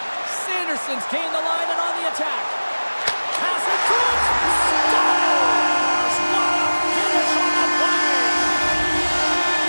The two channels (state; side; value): inverted; both; correlation -1.00